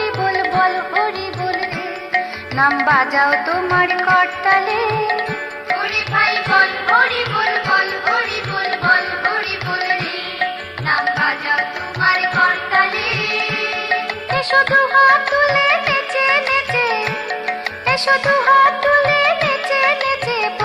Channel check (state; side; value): identical; both; correlation 1.00